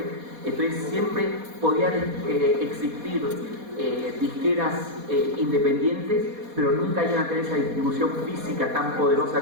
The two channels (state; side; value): late; left; 4.2 ms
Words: Entonces siempre podían existir disqueras independientes, pero nunca iban a tener esa distribución física tan poderosa